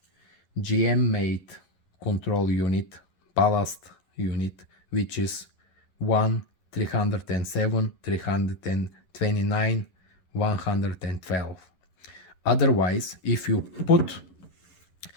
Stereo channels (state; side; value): late; right; 11 ms